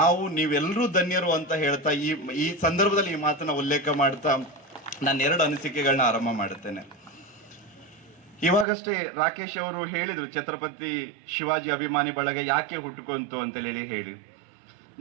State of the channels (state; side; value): drops out; left; at 8.7 s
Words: ನೀವೆಲ್ಲರೂ ಧನ್ಯರು ಅಂತ ಹೇಳ್ತಾ ಈ ಸಂದರ್ಭದಲ್ಲಿ ಈ ಮಾತನ್ನ ಉಲ್ಲೇಖ ಮಾಡ್ತಾ ನಾನು 2 ಅನಿಸಿಕೆಗಳನ್ನ ಆರಂಭ ಮಾಡುತ್ತೇನೆ. ಇವಾಗಷ್ಟೇ ರಾಕೇಶ್ ಅವರು ಹೇಳಿದ್ರು ಛತ್ರಪತಿ ಶಿವಾಜಿ ಅಭಿಮಾನಿ ಬಳಗ ಯಾಕೆ ಹುಟ್ಟುಕೊಂತು ಅಂತ ಹೇಳಿ